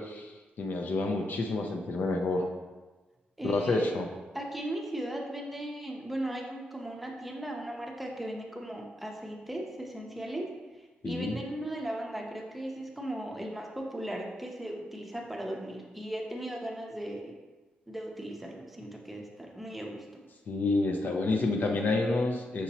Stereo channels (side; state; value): both; normal; correlation 0.82